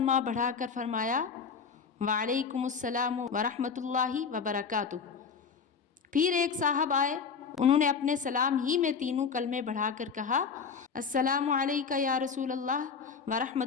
بڑھا کر فرمایا وعلیکم السلام ورحمۃ اللہ وبرکاتہ۔ پھر ایک صاحب آئے، انہوں نے اپنے سلام ہی میں تینوں کلمے بڑھا کر کہا السلام علیکہ یا رسول اللہ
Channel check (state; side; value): quieter; right; 5.8 dB